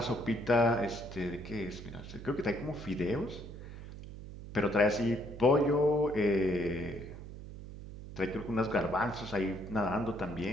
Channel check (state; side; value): noise; right; hum, 12 dB below the sound